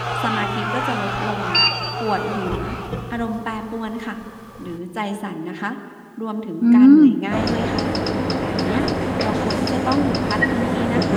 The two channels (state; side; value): identical; both; correlation 1.00